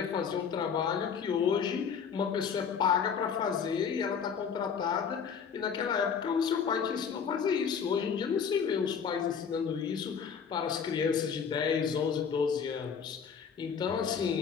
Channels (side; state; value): right; quieter; 6.8 dB